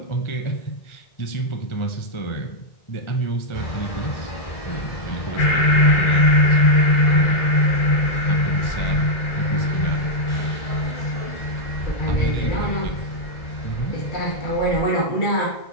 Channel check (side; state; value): right; late; 1.4 ms